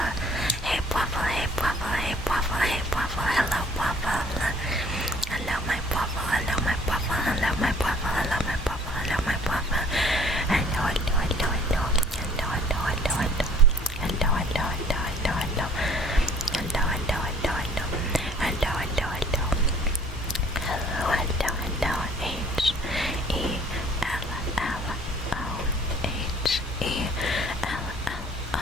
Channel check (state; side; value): normal; both; correlation 0.55